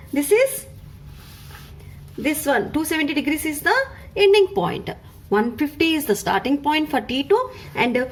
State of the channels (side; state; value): both; identical; correlation 1.00